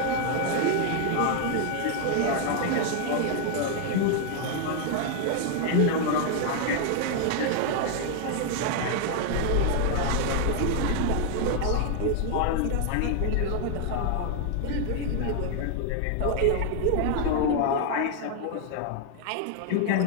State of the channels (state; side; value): different; both; correlation 0.00